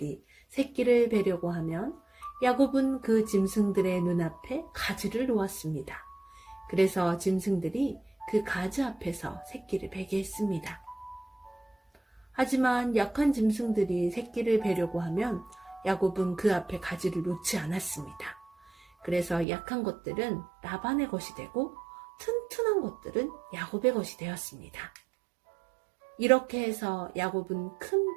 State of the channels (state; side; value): drops out; left; at 19.5 s